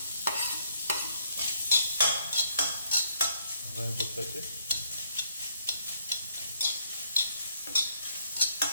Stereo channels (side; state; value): both; inverted; correlation -0.70